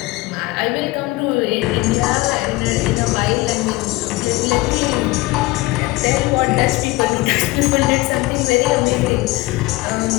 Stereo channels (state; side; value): quieter; right; 20.2 dB